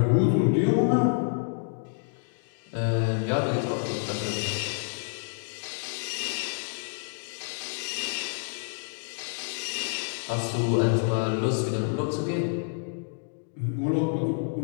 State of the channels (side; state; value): right; silent; digital silence